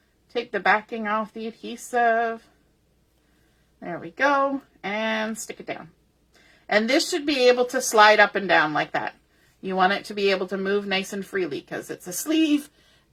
Take the backing off the adhesive. There we go. And stick it down. And this should be able to slide up and down like that. You want it to be able to move nice and freely because it's a sleeve.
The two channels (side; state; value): both; identical; correlation 1.00